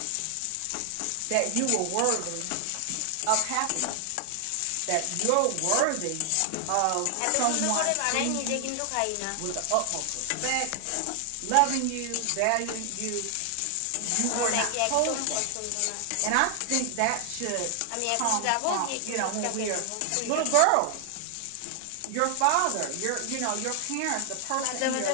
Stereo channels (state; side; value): different; both; correlation 0.00